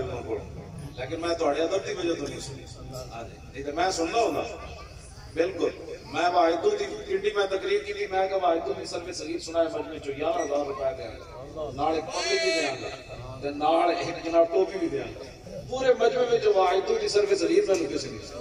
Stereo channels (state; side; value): identical; both; correlation 1.00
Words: کو لیکن میں تہاڈے ادب دی وجہ تو نہیں سنی. ہاں جی نہیں تے میں سننا ہوندا بالکل. میں واحدو دی پنڈی میں تقریر کی تھی. میں کہ واحدو دی سلف صغیر سنائے مجمع چ 11000 روپے دے نال ایک پگڑی بھی دیاں گا تے نال ایک جناب ٹوپی بھی دیاں گا. پورے مجمع وچ واحدو دی سلف صغیر میں کسی نہیں.